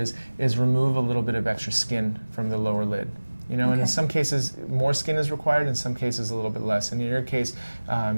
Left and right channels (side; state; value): both; inverted; correlation -1.00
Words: is remove a little bit of extra skin from the lower lid. And in some cases more skin is required, in some cases a little bit less. And in your case,